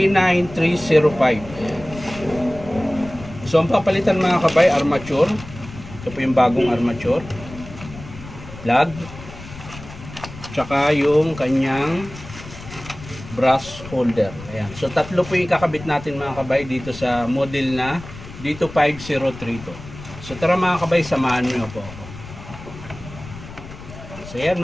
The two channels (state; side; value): noise; left; rumble, 15 dB below the sound